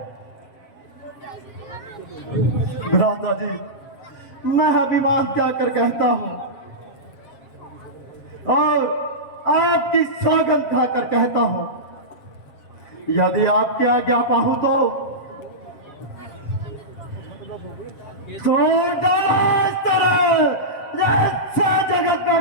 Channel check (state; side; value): late; right; 7.5 ms